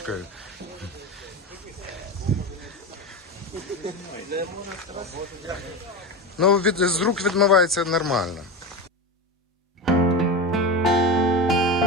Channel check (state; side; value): normal; both; correlation 0.22